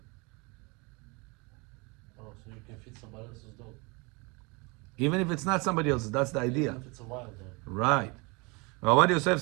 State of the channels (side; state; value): left; quieter; 28.5 dB